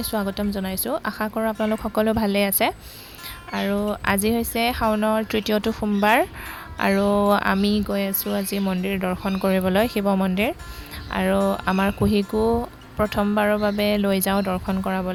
স্বাগতম জনাইছো। আশা কৰোঁ আপোনালোক সকলো ভালে আছে। আৰু আজি হৈছে শাওনৰ তৃতীয়টো সোমবাৰ আৰু আমি গৈ আছো আজি মন্দিৰ দৰ্শন কৰিবলৈ শিৱ মন্দিৰ আৰু আমাৰ কুহিকো প্ৰথমবাৰৰ বাবে লৈ যাওঁ দৰ্শন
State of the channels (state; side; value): identical; both; correlation 1.00